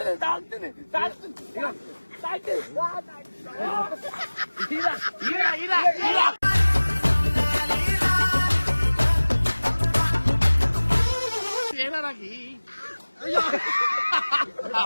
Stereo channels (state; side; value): inverted; both; correlation -1.00